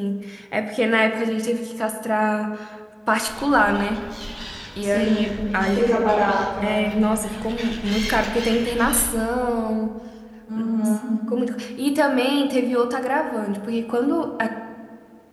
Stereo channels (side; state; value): both; identical; correlation 1.00